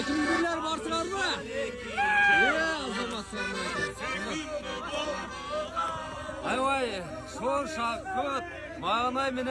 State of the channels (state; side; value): identical; both; correlation 1.00